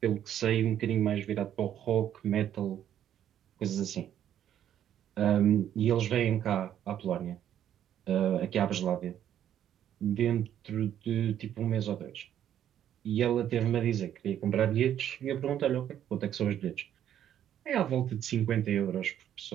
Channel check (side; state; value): left; quieter; 10.5 dB